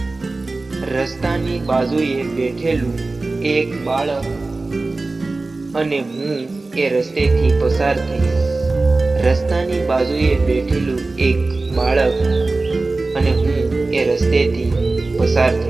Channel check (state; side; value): quieter; left; 3.4 dB